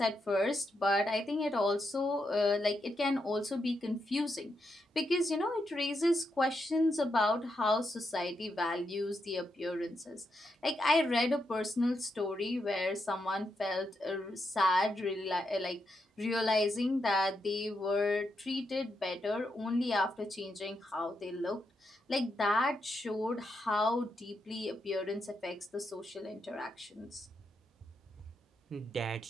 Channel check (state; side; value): normal; both; correlation 0.83